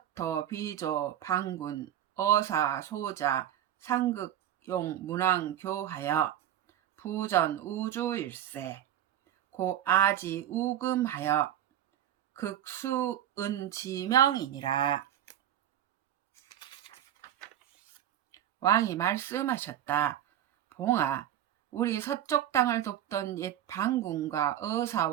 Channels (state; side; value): quieter; left; 11.2 dB